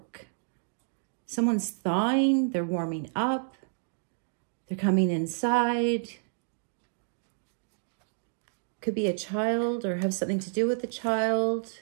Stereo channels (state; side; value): silent; left; digital silence